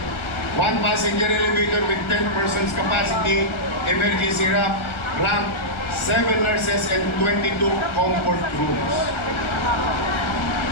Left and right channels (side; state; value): right; late; 1.4 ms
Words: One passenger elevator with 10 persons capacity, emergency ramp, 7 nurses and 22 comfort rooms.